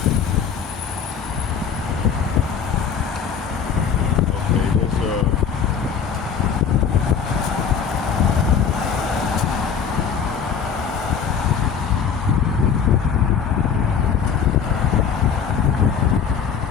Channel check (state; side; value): quieter; right; 7.0 dB